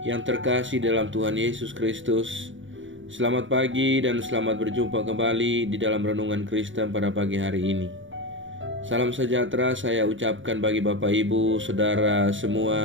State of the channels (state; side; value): late; left; 0.56 ms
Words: yang terkasih dalam Tuhan Yesus Kristus. Selamat pagi dan selamat berjumpa kembali di dalam Renungan Kristen pada pagi hari ini. Salam sejahtera saya ucapkan bagi Bapak Ibu, Saudara